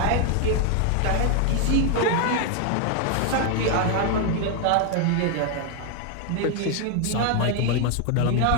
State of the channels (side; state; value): both; different; correlation 0.00